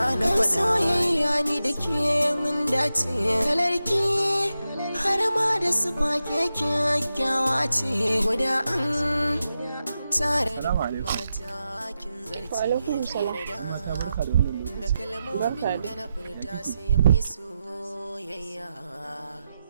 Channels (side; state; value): both; inverted; correlation -0.90